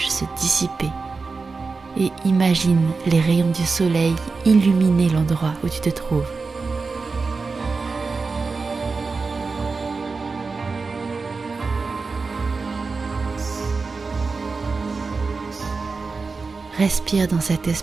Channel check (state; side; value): quieter; left; 4.3 dB